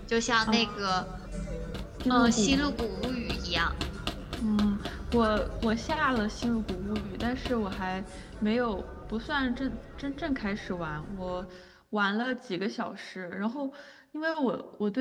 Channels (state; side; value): identical; both; correlation 1.00